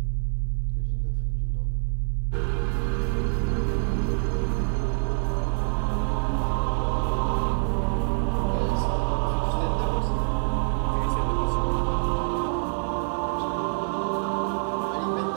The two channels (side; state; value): left; silent; 59 dB below the other